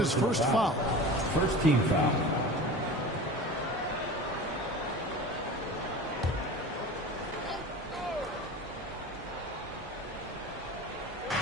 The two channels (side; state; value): both; normal; correlation 0.34